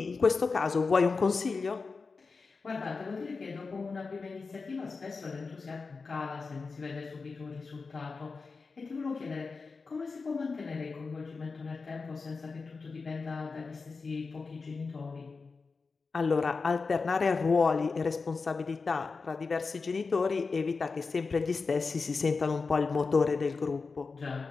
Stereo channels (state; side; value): quieter; right; 4.4 dB